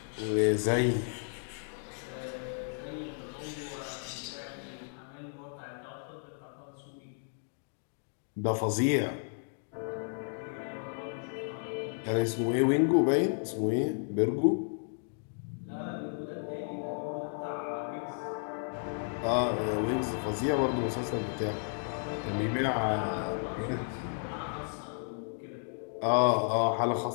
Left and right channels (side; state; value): right; silent; 56 dB below the other